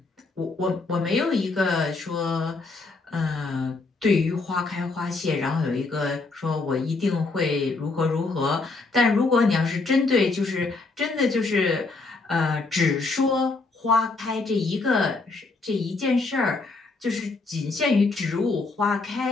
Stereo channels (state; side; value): quieter; right; 3.7 dB